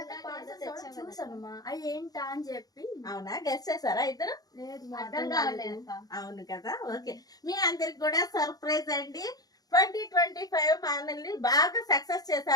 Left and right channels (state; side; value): late; right; 0.18 ms